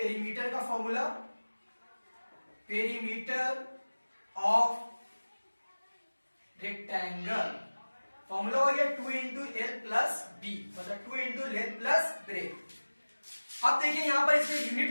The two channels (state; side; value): inverted; both; correlation -1.00